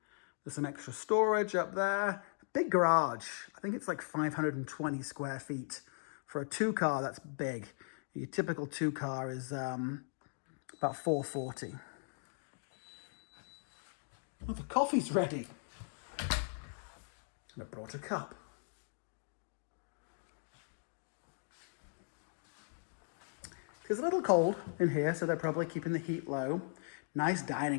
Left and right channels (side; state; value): right; silent; digital silence